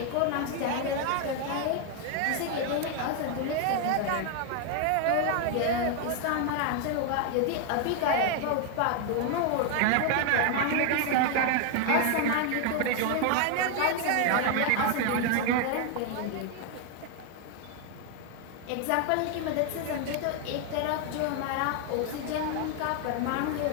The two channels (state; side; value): different; both; correlation 0.01